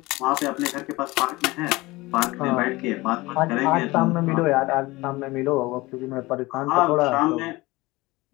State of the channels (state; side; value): quieter; right; 21.2 dB